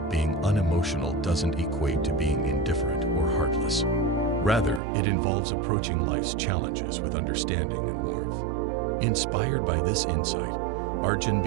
being unemotional doesn't equate to being indifferent or heartless. Rather, it involves approaching life's challenges with understanding and warmth. Inspired by this insight, Arjun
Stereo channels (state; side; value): drops out; left; at 4.8 s